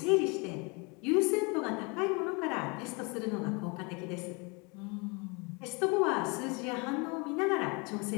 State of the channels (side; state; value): right; quieter; 30.2 dB